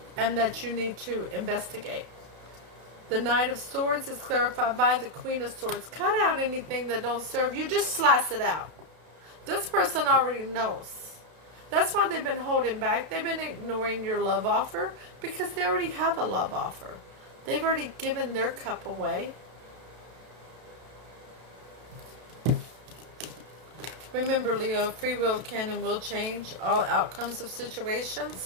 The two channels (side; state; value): left; late; 32 ms